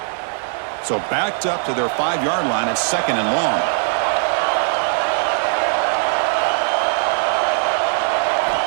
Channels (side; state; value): left; silent; 62 dB below the other